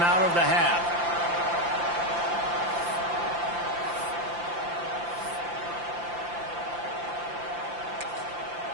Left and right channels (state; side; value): late; left; 5.8 ms